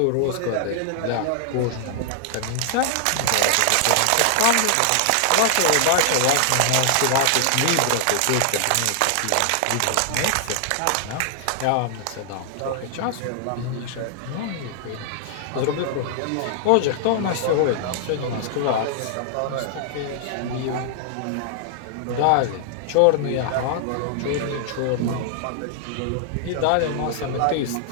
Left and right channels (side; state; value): both; different; correlation 0.00